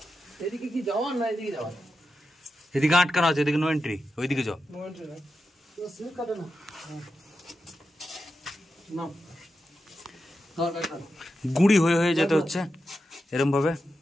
এদিকে কি যাওয়ার না এদিকে যাওয়ার? এদিকে আটকানো আছে, এদিকে নো এন্ট্রি, ওইদিকে যাও। নো এন্ট্রি না, তো সিল কাটে না। নাও গুড়ি হয়ে হয়ে যেতে হচ্ছে এরম ভাবে।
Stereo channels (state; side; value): normal; both; correlation 0.89